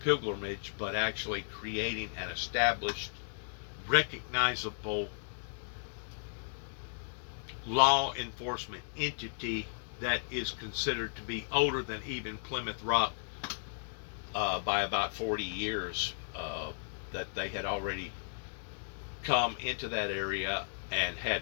pilgrimage, but actually creating an established, recognizable law enforcement entity that is considered to be older than even Plymouth Rock by about 40 years. That they had already come into that area and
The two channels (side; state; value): right; silent; digital silence